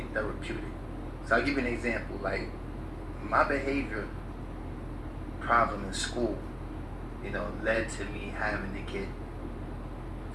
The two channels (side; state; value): both; identical; correlation 1.00